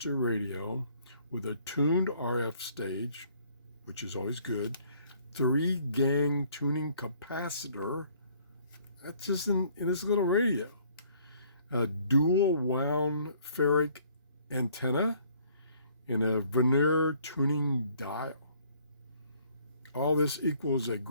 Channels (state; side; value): inverted; both; correlation -0.61